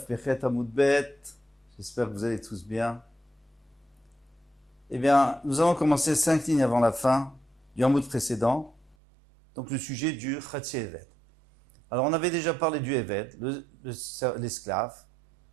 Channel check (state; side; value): drops out; left; at 9.0 s